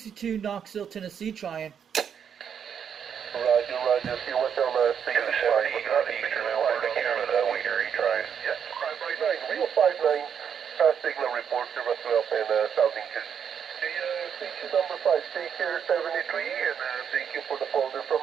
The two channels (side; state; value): left; quieter; 7.8 dB